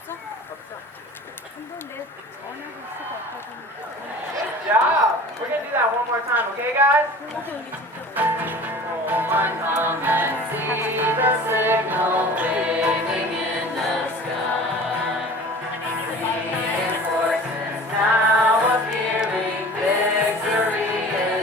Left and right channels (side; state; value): both; normal; correlation 0.41